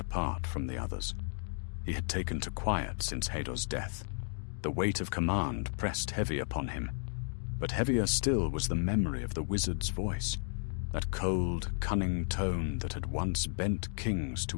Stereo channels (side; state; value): right; silent; 55 dB below the other